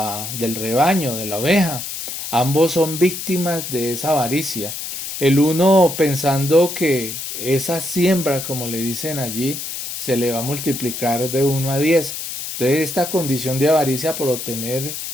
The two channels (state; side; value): noise; left; hiss, 6 dB below the sound